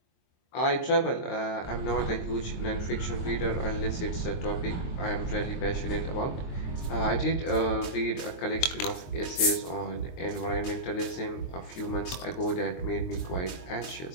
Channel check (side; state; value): right; late; 23 ms